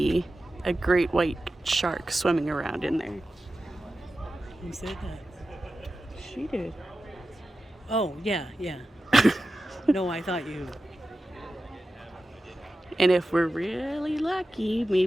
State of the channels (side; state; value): both; normal; correlation 0.93